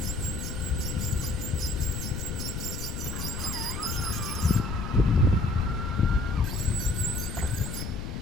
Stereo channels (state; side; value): noise; left; rumble, 5 dB below the sound